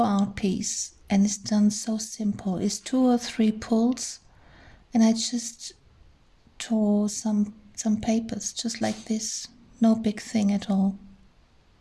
art piece, and it's done so simple. It's 2 or 3 pulls, and I just tore some papers just like this. No big thing at all.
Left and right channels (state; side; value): identical; both; correlation 1.00